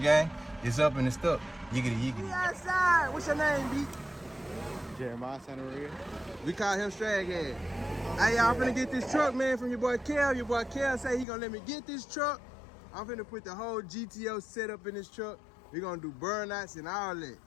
gang. It's up and it's stuck. Yiggity, yiggity. We outside. What's your name, B? Jeremiah, son of Red. We call him Straghead. Hey, y'all, I'm finna get this truck, man, from your boy Kel. Your boy Kel say he gonna let me get this truck. I'm finna put the whole GTO setup in this truck. We gonna do burnouts and all that.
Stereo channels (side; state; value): right; drops out; at 11.2 s